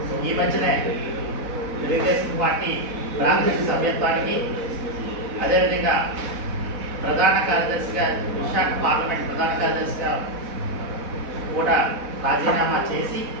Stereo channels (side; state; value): left; late; 4.1 ms